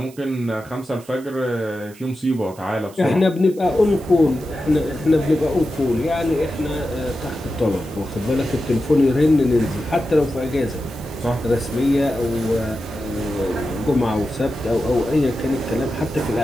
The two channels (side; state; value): right; noise; hiss, 23 dB below the sound